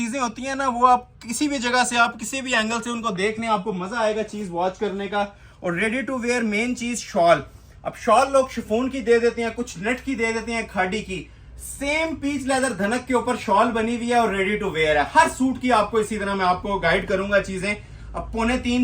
होती हैं ना, वो आप किसी भी जगह से, आप किसी भी एंगल से उनको देखने आपको मजा आएगा चीज वॉच करने का। और रेडी टू वेयर मेन चीज शॉल। अब शॉल लोग शिफॉन की दे देते हैं, कुछ नेट की दे देते हैं, खाड़ी की। सेम पीच लेदर धनक के ऊपर शॉल बनी हुई है और रेडी टू वेयर है। हर सूट की आपको इसी तरह मैं आपको गाइड करूंगा चीजें। अब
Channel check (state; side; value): identical; both; correlation 1.00